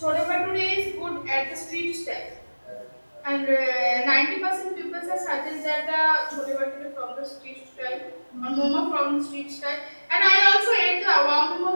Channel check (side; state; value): both; inverted; correlation -1.00